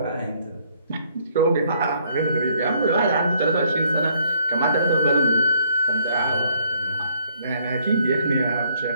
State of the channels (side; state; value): both; inverted; correlation -0.66